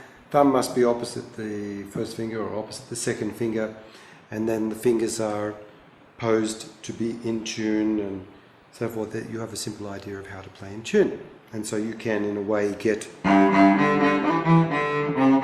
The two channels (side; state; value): both; identical; correlation 1.00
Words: must be opposite the first finger or opposite the second finger, and then the fingers are posed to be in tune and so forth, that you have a simple idea of how to play in tune. And so you can, in a way, get...